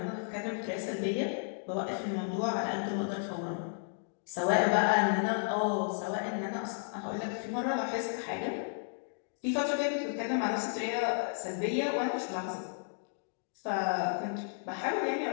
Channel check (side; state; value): right; silent; digital silence